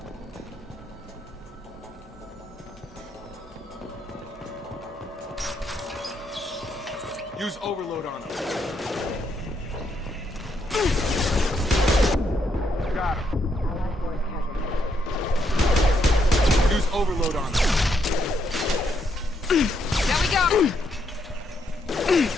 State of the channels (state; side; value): normal; both; correlation 0.76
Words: Use overload on them. Got him. Use overload on them. There we go!